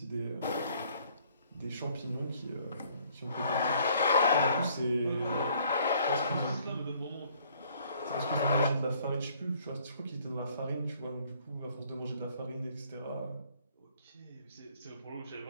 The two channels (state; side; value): inverted; both; correlation -0.61